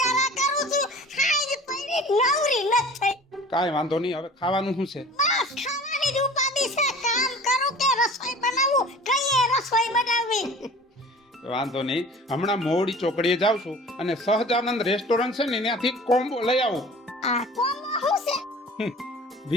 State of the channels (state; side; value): normal; both; correlation 0.43